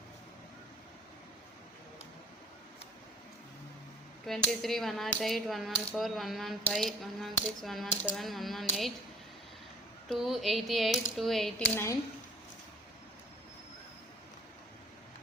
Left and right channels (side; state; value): both; normal; correlation 0.51